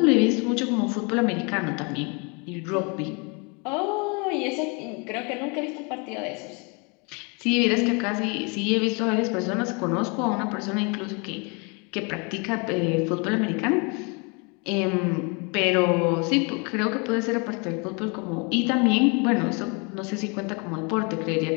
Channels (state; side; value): quieter; right; 32.2 dB